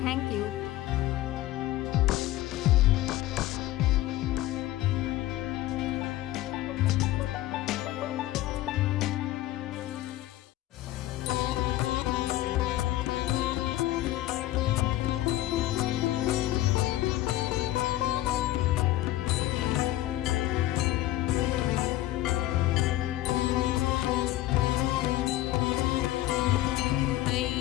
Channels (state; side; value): quieter; right; 15.5 dB